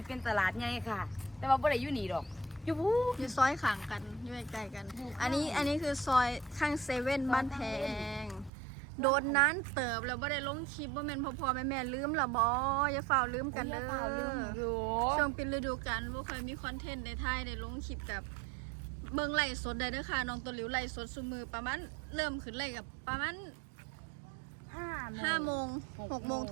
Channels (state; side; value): drops out; left; at 8.5 s